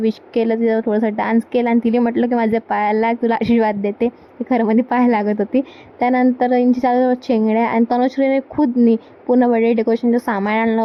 केलं, तिचं थोडंसं डान्स केला आणि तिने म्हटलं की माझ्या पायाला लाग, तुला आशीर्वाद देते. ती खरं मध्ये पाया लागत होती. त्यानंतर यांची चालू चेंगड्या आणि तनुश्रीने खुदनी पूर्ण बर्थडे डेकोरेशनचं सामान आणलं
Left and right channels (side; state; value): both; identical; correlation 1.00